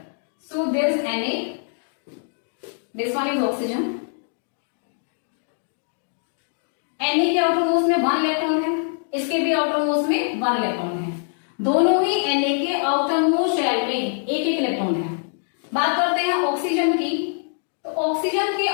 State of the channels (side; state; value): right; silent; digital silence